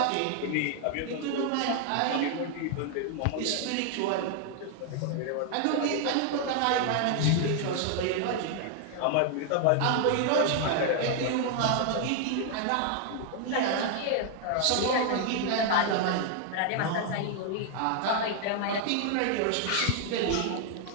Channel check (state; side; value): different; both; correlation 0.00